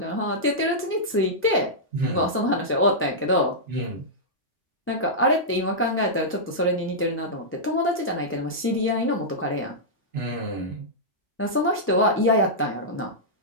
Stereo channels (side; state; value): both; normal; correlation -0.11